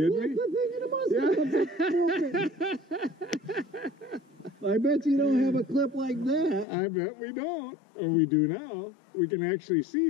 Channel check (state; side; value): drops out; right; at 6.7 s